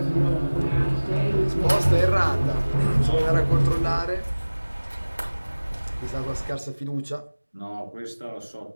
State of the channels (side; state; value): both; inverted; correlation -1.00